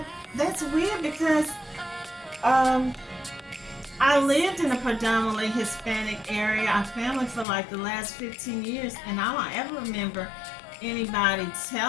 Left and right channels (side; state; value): right; drops out; at 7.5 s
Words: that's weird because um I lived in a predominantly Hispanic area. Our family for like the last 15 years, and I don't ever remember anybody